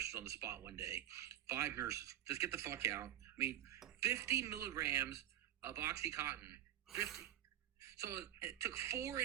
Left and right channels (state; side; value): quieter; left; 12.3 dB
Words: on the spot one day. 5 nurses. Just get the fuck out. I mean, 50 milligrams of Oxycontin. 50. So it took 4